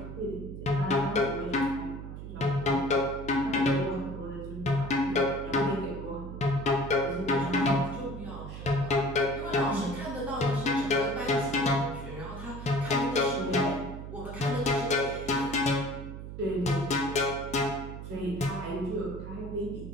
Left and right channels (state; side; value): noise; right; hum, 9 dB below the sound